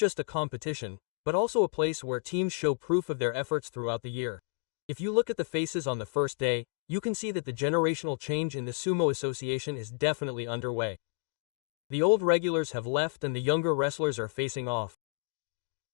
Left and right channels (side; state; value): right; silent; 57 dB below the other